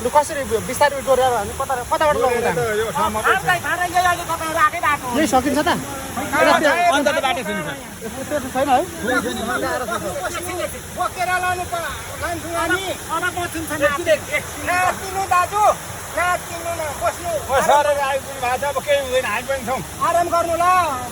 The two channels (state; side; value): identical; both; correlation 1.00